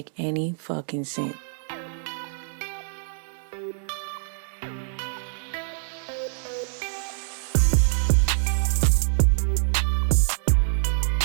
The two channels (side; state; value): left; silent; 61 dB below the other